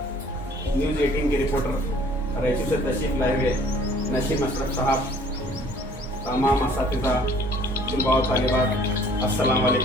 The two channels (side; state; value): both; normal; correlation 0.55